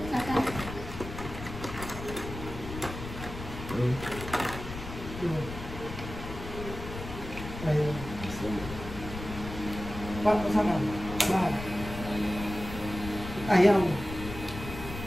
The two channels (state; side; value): noise; left; rumble, 9 dB below the sound